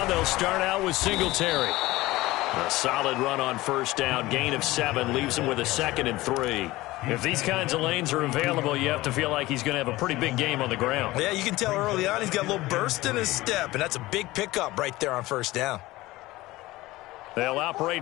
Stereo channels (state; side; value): quieter; right; 18.7 dB